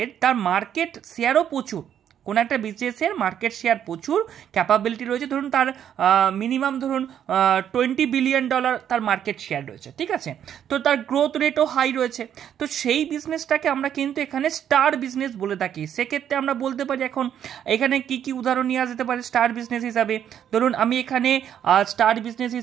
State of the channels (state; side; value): quieter; left; 9.6 dB